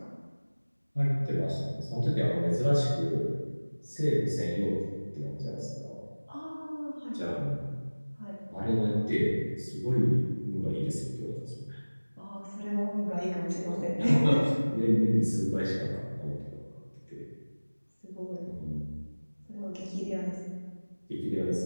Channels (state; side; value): inverted; both; correlation -1.00